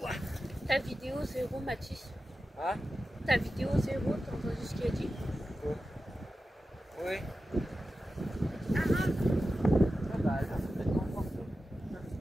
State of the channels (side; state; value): both; normal; correlation 0.92